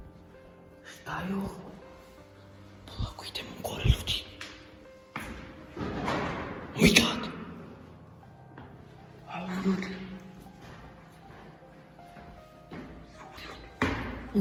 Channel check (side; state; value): both; identical; correlation 1.00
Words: Šta je ovo? Polako idemo gore, ljudi. My God. A ovo, ljudi.